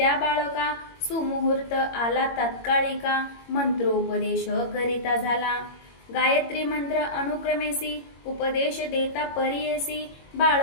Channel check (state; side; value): late; right; 21 ms